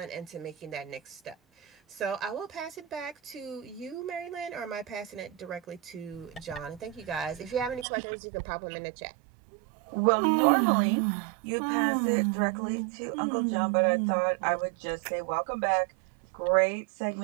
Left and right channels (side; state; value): left; drops out; at 7.9 s